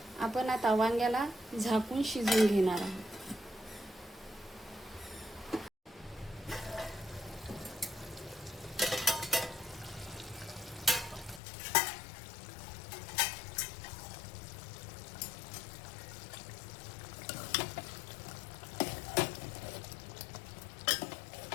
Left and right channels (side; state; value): right; drops out; at 11.4 s